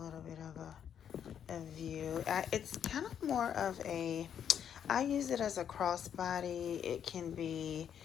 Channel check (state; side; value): quieter; right; 8.7 dB